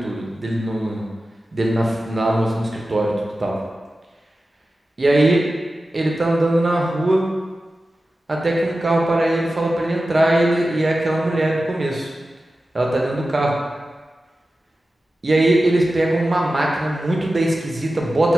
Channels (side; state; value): both; normal; correlation 0.94